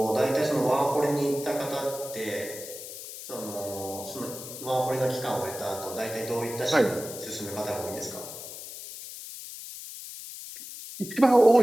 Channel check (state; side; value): noise; left; hiss, 11 dB below the sound